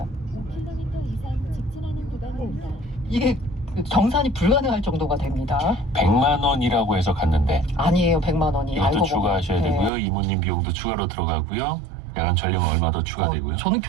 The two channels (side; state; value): left; drops out; at 9.9 s